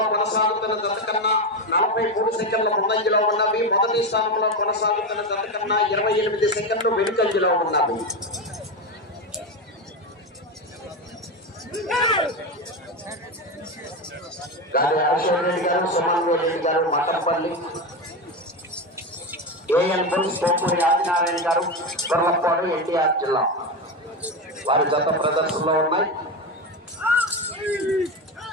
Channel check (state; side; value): normal; both; correlation 0.16